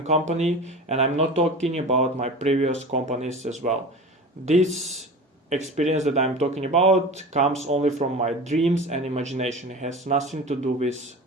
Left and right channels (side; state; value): both; normal; correlation 0.33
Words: company, and I'm not talking about my previous companies as well. This experience that I'm talking about comes only from my dreams and imagination. It has nothing to do with